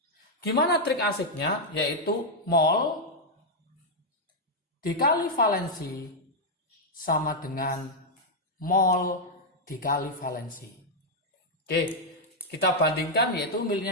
Gimana trik asiknya? Yaitu mol dikali valensi sama dengan mol dikali valensi. Oke, kita bandingkan, yaitu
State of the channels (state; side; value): normal; both; correlation -0.01